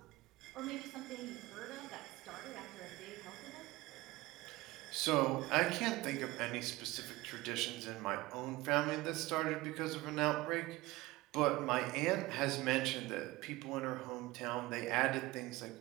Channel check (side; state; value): left; quieter; 19.8 dB